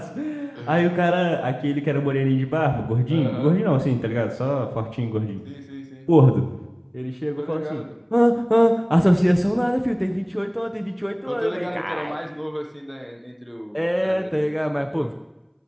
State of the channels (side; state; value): both; identical; correlation 1.00